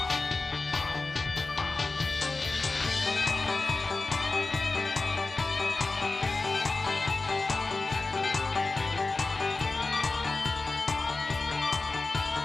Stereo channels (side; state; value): right; quieter; 3.5 dB